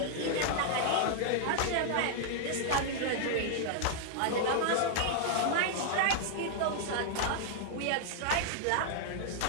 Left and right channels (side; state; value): both; different; correlation -0.01